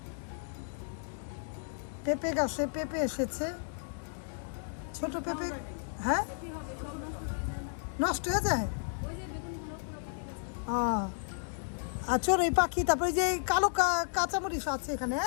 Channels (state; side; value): silent; right; digital silence